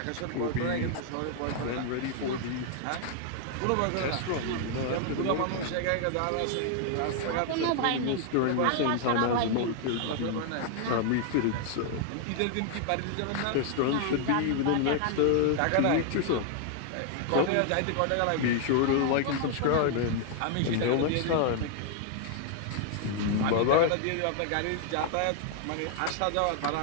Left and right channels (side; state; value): both; different; correlation 0.00